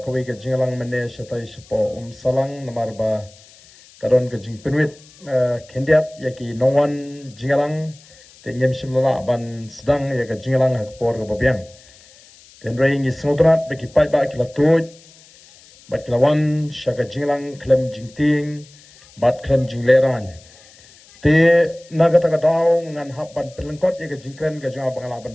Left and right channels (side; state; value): left; noise; hiss, 25 dB below the sound